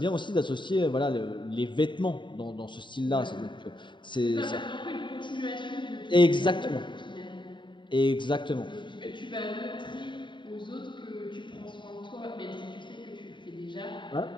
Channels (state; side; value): late; right; 0.23 ms